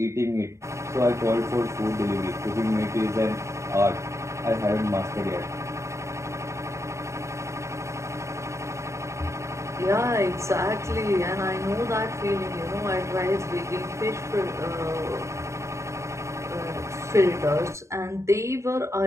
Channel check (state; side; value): late; left; 0.14 ms